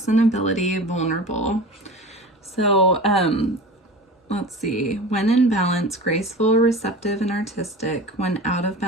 and ability, vulnerable. So, let's see. When in balance, graceful, receptive, and artistic. When out of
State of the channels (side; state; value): both; normal; correlation 0.35